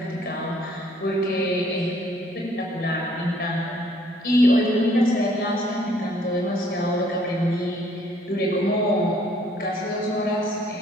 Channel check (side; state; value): both; normal; correlation 0.62